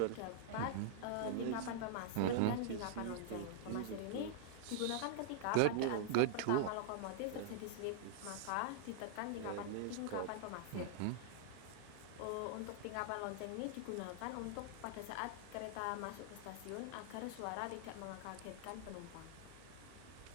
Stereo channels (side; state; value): both; different; correlation -0.01